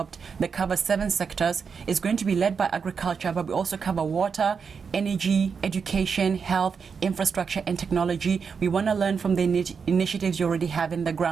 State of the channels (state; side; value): quieter; left; 5.9 dB